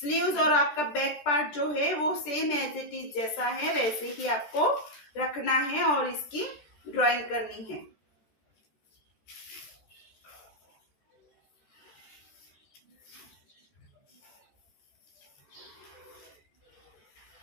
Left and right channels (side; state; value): right; late; 14 ms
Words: और आपका बैक पार्ट जो है वो सेम एज इट इज जैसा है वैसे ही आपको रखना है और इसकी ड्राइंग करनी है।